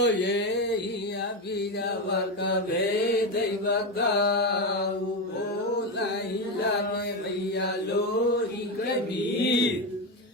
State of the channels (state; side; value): normal; both; correlation 0.13